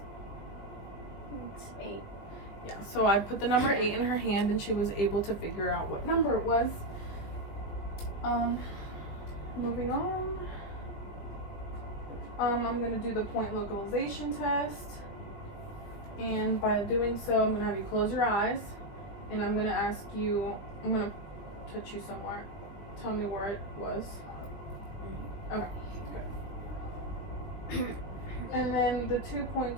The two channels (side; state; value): right; late; 20 ms